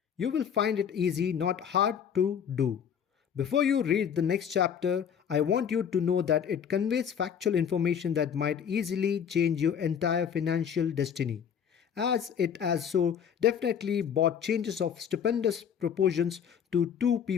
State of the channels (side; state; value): right; quieter; 8.0 dB